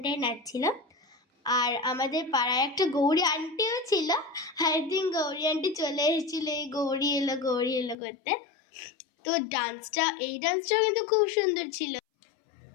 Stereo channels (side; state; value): right; drops out; at 8.0 s